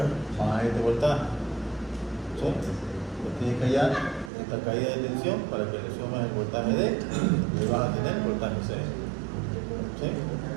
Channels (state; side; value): drops out; left; at 4.3 s